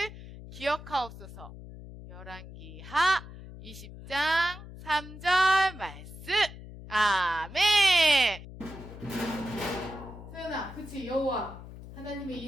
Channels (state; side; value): noise; left; hum, 14 dB below the sound